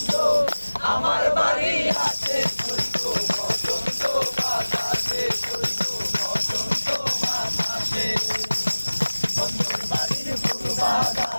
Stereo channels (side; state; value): both; inverted; correlation -1.00